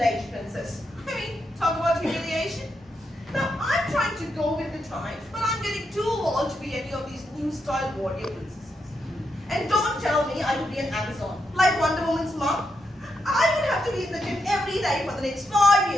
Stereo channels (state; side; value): normal; both; correlation 0.82